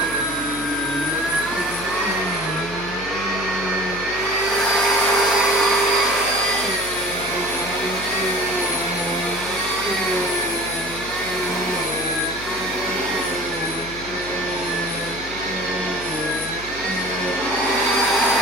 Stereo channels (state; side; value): noise; left; hum, 15 dB below the sound